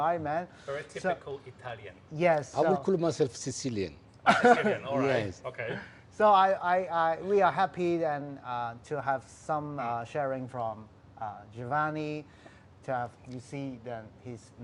man? Very typical Italian. Yes. I will call myself Sicilian. Sicilian, all right. Yes. Okay. So we are happy and to have some sharing from Giovanni. To have, you see his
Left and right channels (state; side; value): identical; both; correlation 1.00